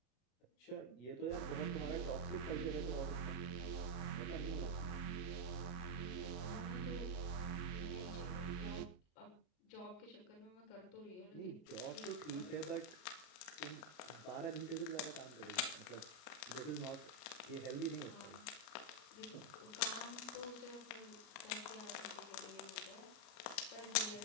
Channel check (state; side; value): late; right; 33 ms